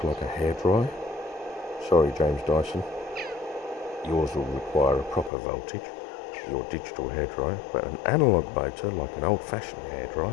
like a hairdryer, sorry James Dyson, yours will require a proper voltage, your digital hairdryer, but an analog motor like an old-fashioned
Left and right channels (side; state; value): right; drops out; at 5.3 s